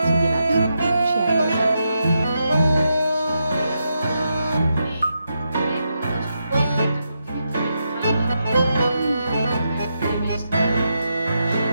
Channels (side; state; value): both; inverted; correlation -0.84